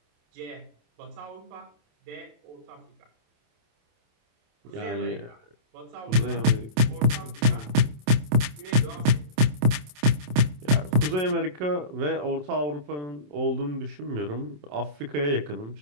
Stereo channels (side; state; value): left; late; 27 ms